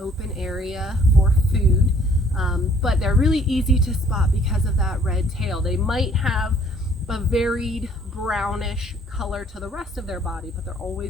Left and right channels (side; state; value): both; normal; correlation 0.59